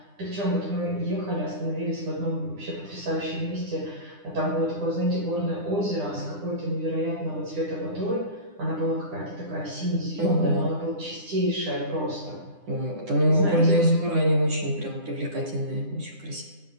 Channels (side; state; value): left; late; 9.9 ms